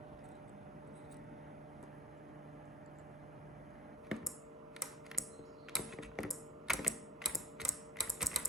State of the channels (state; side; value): normal; both; correlation 0.40